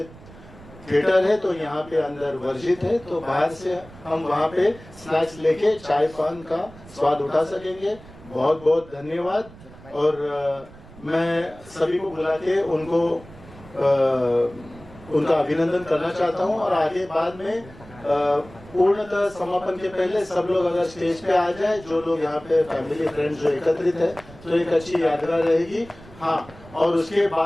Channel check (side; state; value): right; noise; rumble, 20 dB below the sound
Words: थिएटर है तो यहाँ पे अंदर वर्जित है, तो बाहर से हम वहाँ पे स्नैक्स लेके चाय पान का स्वाद उठा सकेंगे। बहुत बहुत धन्यवाद। और मैं सभी को बुला के उनको उनका अभिनंदन करना चाहता हूँ। और आगे बाद में पूर्णतः समापन के पहले सब लोग अगर स्टेज पे आ जाए, जो लोग यहाँ पे फैमिली फ्रेंड्स जो एकत्रित है, तो एक अच्छी यादगार रहेगी। हाँ, और उसके